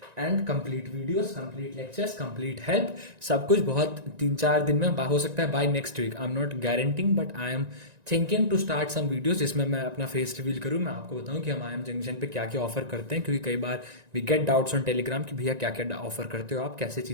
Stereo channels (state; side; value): late; left; 1.9 ms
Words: and complete videos, complete lectures, complete help, सब कुछ बहुत 3-4 दिन में हो सकता है by next week. I am not guaranteeing but I am thinking to start some videos जिसमें मैं अपना फेस रिवील करूं, मैं आपको बताऊं कि हम आई एम जंक्शन पे क्या क्या ऑफर करते हैं, क्योंकि कई बार we get doubts on Telegram कि भैया क्या क्या ऑफर करते हो आप, कैसे